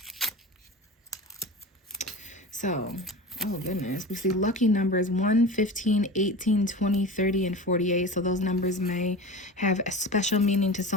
So, oh goodness, we see lucky numbers 1, 15, 18, 20, 30, and 48. So those numbers may have a special meaning to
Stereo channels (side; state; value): both; normal; correlation 0.32